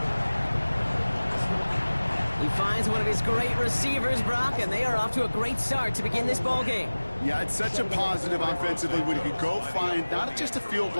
He finds one of his great receivers, Brock, and they are off to a great start to begin this ball game. Yeah, it's such a positive offensively when he could go find not just a field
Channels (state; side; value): inverted; both; correlation -1.00